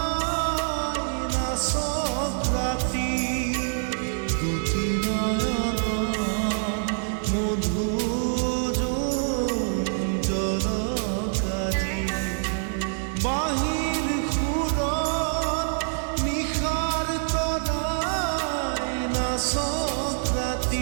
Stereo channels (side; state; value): left; silent; 61 dB below the other